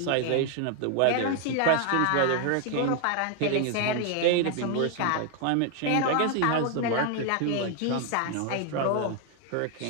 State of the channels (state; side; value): different; both; correlation 0.00